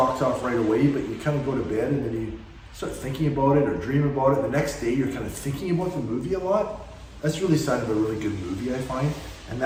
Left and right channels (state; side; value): identical; both; correlation 1.00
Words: off right away, but you kind of go to bed and then you start thinking about it or dream about it. The next day you're kind of thinking about the movie a lot. That's really a sign of a really good movie, I find. And